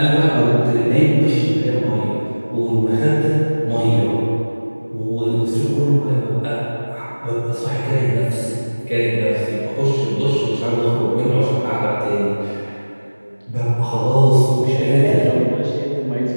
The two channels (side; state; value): both; inverted; correlation -1.00